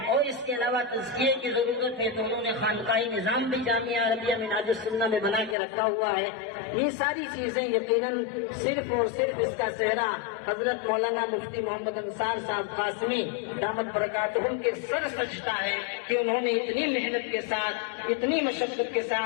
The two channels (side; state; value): right; drops out; at 5.6 s